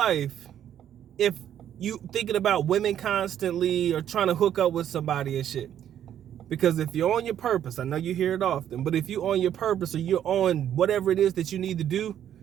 if you thinking about women constantly or trying to hook up with somebody and shit. Because if you're on your purpose, I know you hear it often, but if you're on your purpose or you're on whatever it is that you need to do,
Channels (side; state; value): left; quieter; 10.3 dB